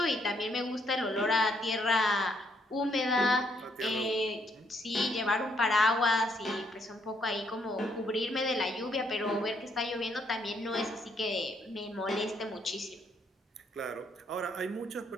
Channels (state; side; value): normal; both; correlation 0.72